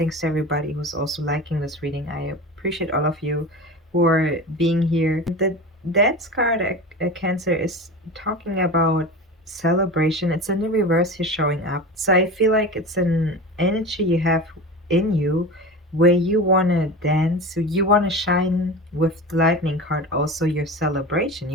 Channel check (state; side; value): normal; both; correlation 0.30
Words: to everybody who's also liking this reading. I appreciate all of you who are being here. The Death's card, Cancer, is talking about celebration. It's in the reverse here showing up. So I feel like it's an energy you have in you where you want to dance, so you want to shine with the lightning card, also your celebration.